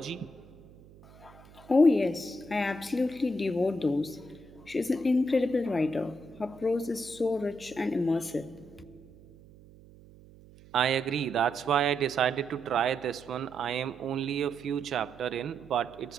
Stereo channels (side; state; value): right; noise; hum, 23 dB below the sound